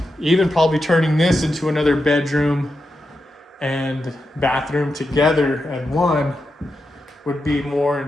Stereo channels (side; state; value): both; normal; correlation 0.87